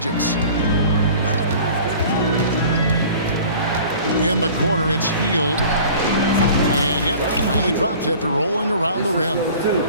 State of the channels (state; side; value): inverted; both; correlation -0.45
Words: In the corner, it's Hield. And yep, finally drops after rolling around the rim.